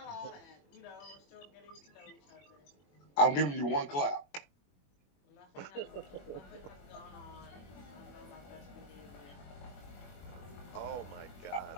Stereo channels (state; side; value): late; right; 21 ms